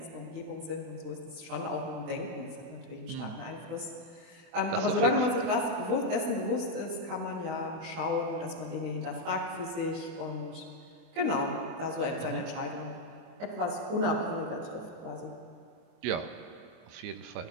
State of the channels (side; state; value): left; late; 24 ms